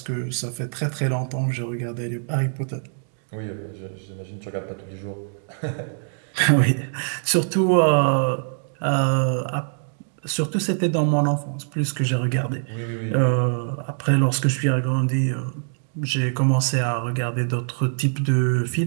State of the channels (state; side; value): silent; left; digital silence